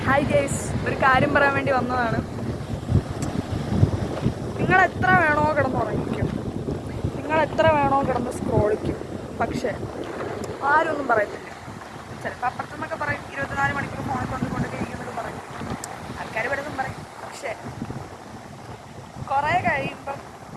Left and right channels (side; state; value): both; identical; correlation 1.00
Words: Hi guys, ഒരു കാര്യം പറയാൻ വേണ്ടി വന്നതാണ്. നിങ്ങൾ എത്ര വേണോ കിടന്നുറങ്ങിക്കും, നിങ്ങൾ എത്ര വേണോ കിടന്ന് സ്ക്രോളിക്കും, പക്ഷേ ആരും ഒന്നും പറയത്തില്ല. ചിലപ്പോൾ അപ്പുറത്തുനിന്നൊക്കെ പറയും 24 മണിക്കൂർ ഫോണിൽ കൊണ്ടൊക്കെ ഇരിക്കുന്നൊക്കെ പറയും, ആൾക്കാർ പലതും പറയും. പക്ഷേ കുറേ കഴിയുമ്പം